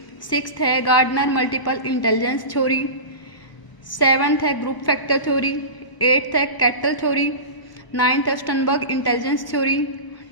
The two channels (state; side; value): late; right; 1.0 ms